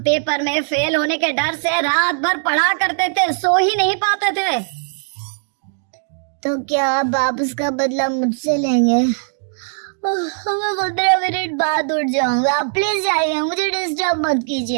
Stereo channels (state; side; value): silent; left; digital silence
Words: पेपर में फेल होने के डर से रात भर पढ़ा करते थे, सो ही नहीं पाते थे। तो क्या आप उसका बदला मुझसे लेंगे? मैं 15 मिनट बाद उठ जाऊंगा, आप प्लीज जाइए, मुझे डिस्टर्ब मत